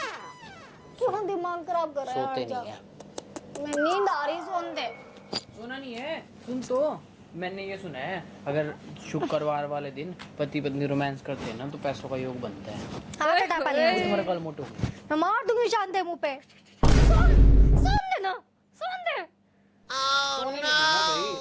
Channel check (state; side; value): identical; both; correlation 1.00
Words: क्यों दिमाग खराब कर रहा है? सोते नहीं है। मैं नींद आ रही, सोन दे। सुना नहीं है? सुन तो, मैंने ये सुना है अगर शुक्रवार वाले दिन पति पत्नी रोमांस करते हैं ना तो पैसों का योग बनता है। हाथ हटा पहले। तुम्हारा कल मोटो। मैं मार दूंगी शांत मुंह पे। सोन दे ना, सोन दे। सोने नहीं दूंगा